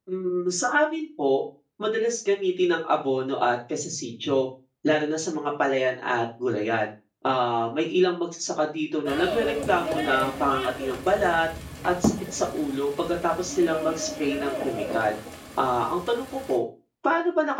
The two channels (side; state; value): both; identical; correlation 1.00